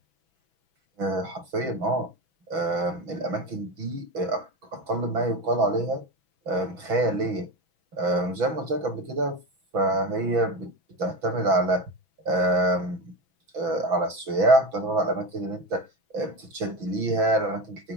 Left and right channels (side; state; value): left; late; 6.1 ms